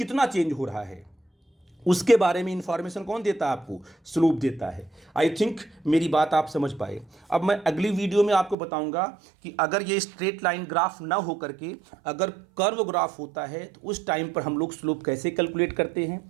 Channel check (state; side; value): drops out; left; at 8.6 s